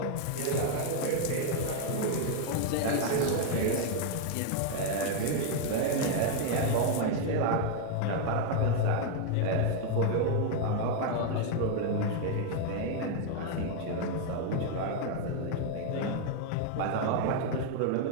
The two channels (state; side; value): different; both; correlation 0.01